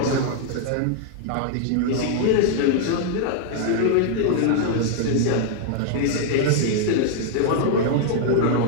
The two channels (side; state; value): both; different; correlation -0.01